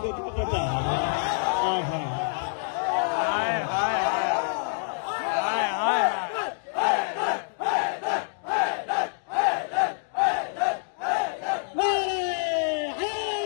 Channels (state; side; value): silent; right; digital silence